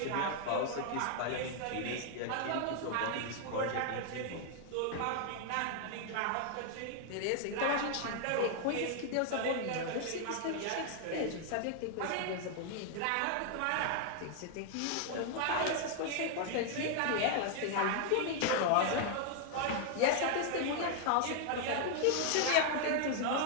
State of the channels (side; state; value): both; different; correlation 0.00